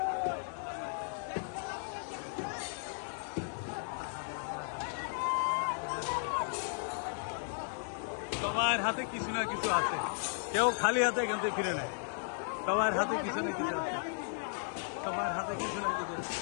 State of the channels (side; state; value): right; silent; digital silence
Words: সবার হাতে কিছু না কিছু আছে, কেউ খালি হাতে এখান থেকে ফিরে নেয়, সবার হাতে কিছু না কিছু আছে, সবার হাতে কিছু না কিছু আছে,